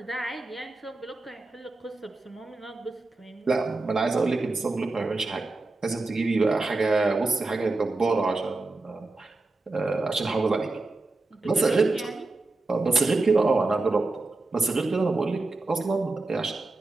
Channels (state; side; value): quieter; left; 3.2 dB